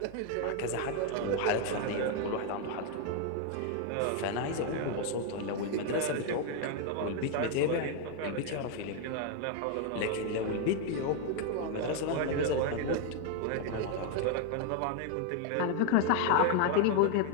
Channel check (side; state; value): both; different; correlation 0.00